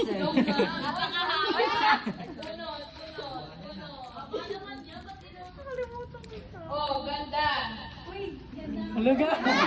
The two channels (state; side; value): identical; both; correlation 1.00